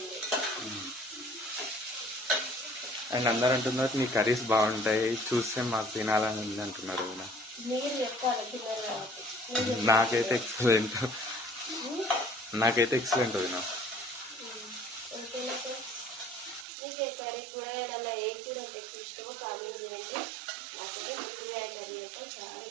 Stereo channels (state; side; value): drops out; left; at 16.7 s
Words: అండ్ అందరు అంటున్నారు నీ కర్రీస్ బాగుంటాయి, చూస్తే మాకు తినాలని ఉంది అంటున్నారు. మీరు చెప్పాలి తిన్నారు కాబట్టి. నాకైతే ఎక్సలెంట్ వదినా. మీకు కర్రీ కూరగాయలలో ఏ కూర అంటే ఇష్టమో కామెంట్ చేయండి. నాకైతే కూరగాయ కర్రీ అంటే చాలా